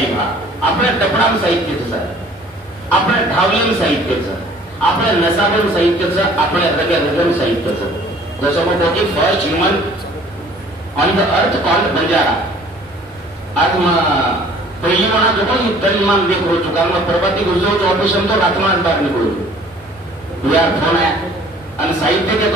बा आपल्या टपणाम साहित्याचं आपल्या ढावलेम साहित्याचं आपल्या नसाबन साहित्याचं आपल्या रगम साहित्याचं जसं मग की first human on the earth called Banjara आज पहिली म्हणा जो पण तरीमान देख हो चुका मग प्रभाती गुजरो तो ऑपरेशन तो रातमास बाहर निकलो यार फोन आहे आणि साहित्य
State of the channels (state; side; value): normal; both; correlation 0.52